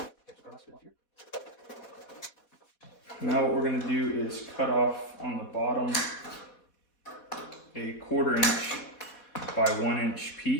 Now what we're going to do is cut off on the bottom a 1/4 inch by 1 inch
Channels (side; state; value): right; late; 4.2 ms